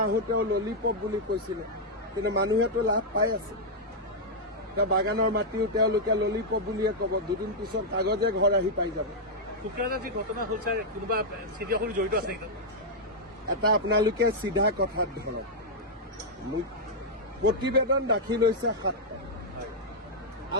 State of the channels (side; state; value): both; normal; correlation -0.04